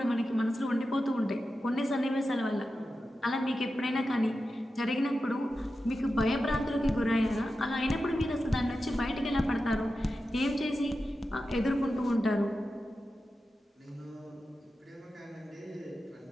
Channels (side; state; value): both; normal; correlation 0.92